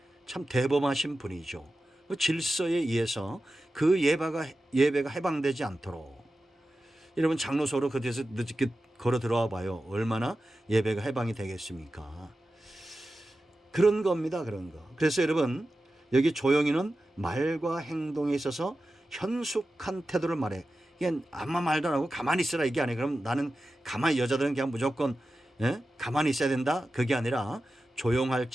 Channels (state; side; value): normal; both; correlation 0.93